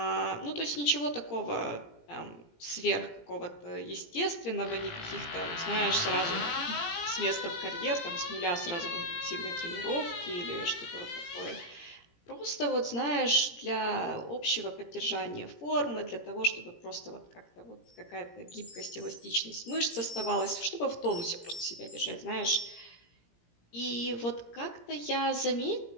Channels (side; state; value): right; late; 17 ms